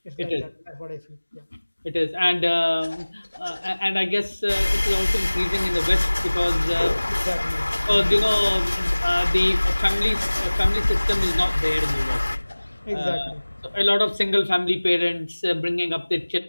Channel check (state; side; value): inverted; both; correlation -1.00